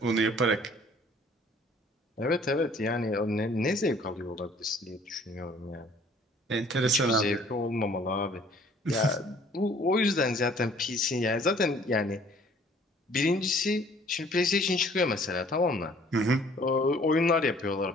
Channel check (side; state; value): both; normal; correlation 0.56